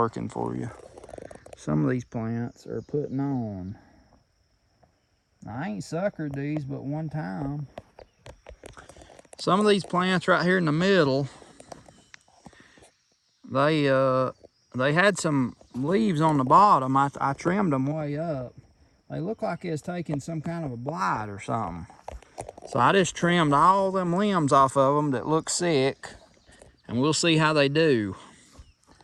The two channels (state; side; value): identical; both; correlation 1.00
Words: for you. Some of these plants are putting on. I ain't suckered these but one time. Some of these plants right here in the middle, they had some leaves on the bottom. I trimmed them way up. They look like it's taking some kind of a blight or something. So I just trimmed all them limbs off of them that look sick, and we'll see how they do.